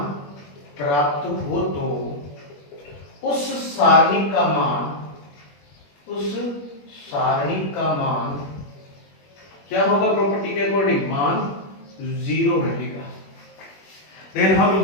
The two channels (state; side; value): late; right; 21 ms